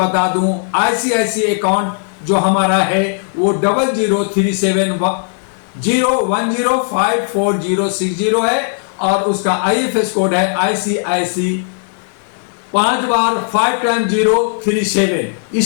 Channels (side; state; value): right; silent; digital silence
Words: दूं, आईसीआईसी अकाउंट जो हमारा है वो 003710105460 है और उसका आईएफएस कोड है आईसीआईसी 5 बार 5 टाइम 037।